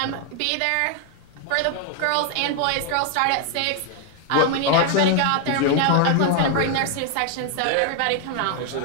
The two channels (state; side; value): different; both; correlation 0.00